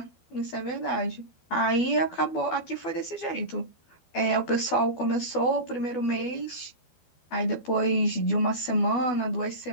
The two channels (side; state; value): right; late; 12 ms